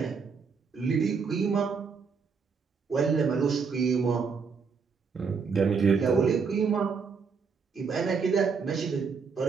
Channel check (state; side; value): quieter; left; 5.5 dB